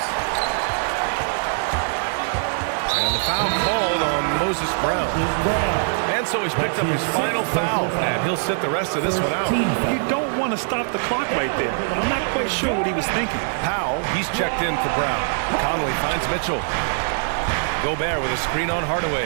And the foul called on Moses Brown. And so he's picked up his final foul, and he'll sit the rest of this one out. You don't want to stop the clock right there. I'm not quite sure what he was thinking. Powell, he's checked in for Brown. Conley finds Mitchell. Gobert with a screen on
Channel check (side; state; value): left; silent; 63 dB below the other